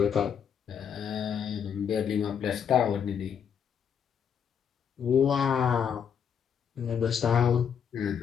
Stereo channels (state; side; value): quieter; right; 7.8 dB